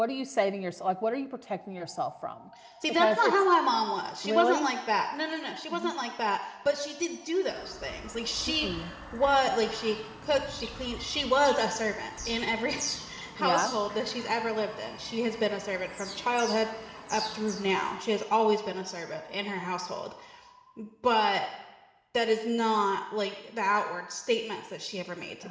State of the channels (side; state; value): both; identical; correlation 1.00